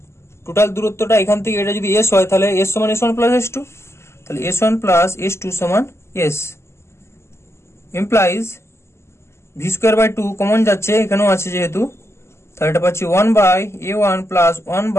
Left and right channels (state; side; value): late; right; 0.13 ms